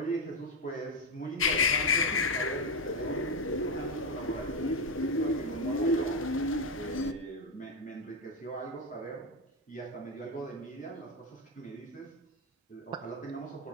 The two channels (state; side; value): normal; both; correlation 0.07